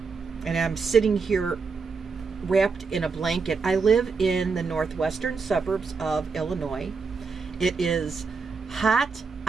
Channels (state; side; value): quieter; left; 4.9 dB